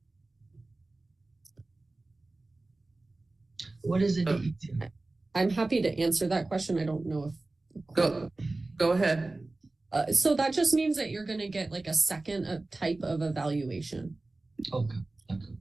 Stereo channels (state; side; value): quieter; left; 3.1 dB